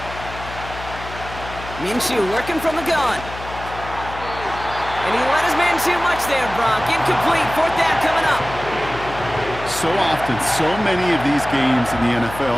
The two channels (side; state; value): left; noise; hum, 12 dB below the sound